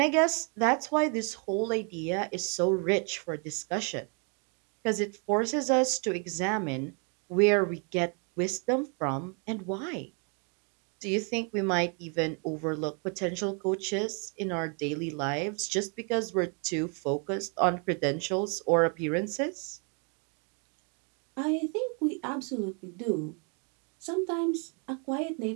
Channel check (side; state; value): left; quieter; 38.0 dB